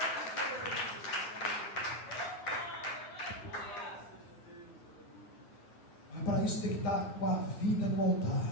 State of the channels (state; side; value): late; right; 9.6 ms